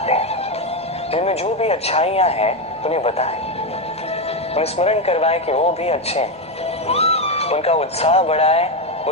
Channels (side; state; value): both; normal; correlation 0.09